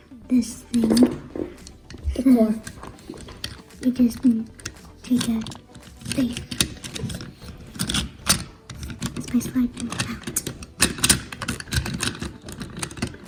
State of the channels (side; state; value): both; identical; correlation 1.00